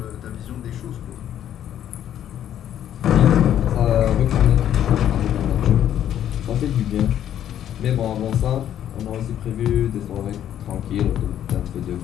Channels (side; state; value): right; quieter; 10.7 dB